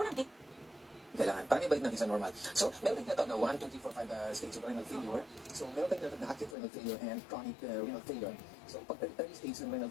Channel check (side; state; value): right; drops out; at 6.6 s